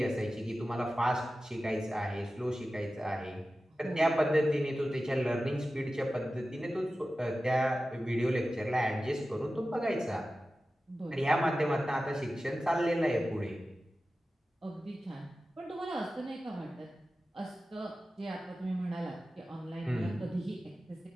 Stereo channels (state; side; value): normal; both; correlation 0.94